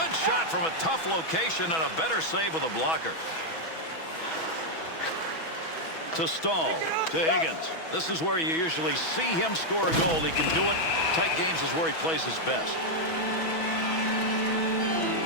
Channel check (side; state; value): right; late; 6.2 ms